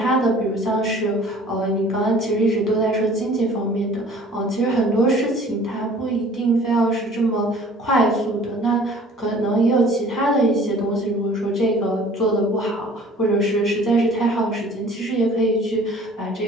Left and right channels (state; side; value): normal; both; correlation 0.50